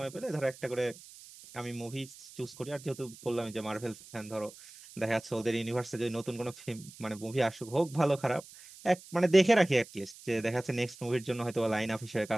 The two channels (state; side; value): noise; right; hiss, 19 dB below the sound